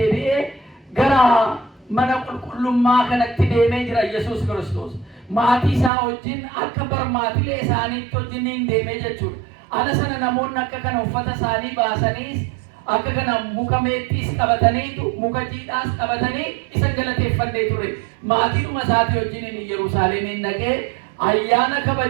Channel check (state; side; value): drops out; left; at 5.9 s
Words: gara mana qulqullummaa kanatti deemee jira Yesuus Kiristoos. Maatii isaa wajjin akka barmaatilee isaaniitti wajjin deemee jechuudha. Ala sana namoonni akka kana uffata isaanii baasaniis akka kana muka meexxiis qabataniitu muka jiidhaas qabatanii isan galateeffannee ture. Maatiidhuma isaatii wajjin Yerusaalemiin dhaqee ayyaana